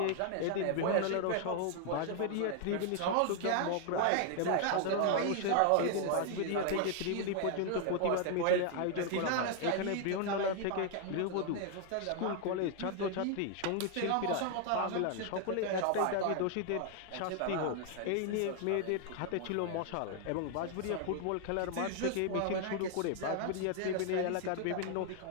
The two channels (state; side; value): different; both; correlation 0.00